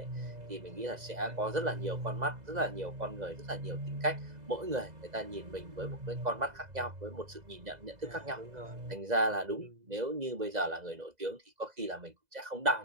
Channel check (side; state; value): left; late; 2.0 ms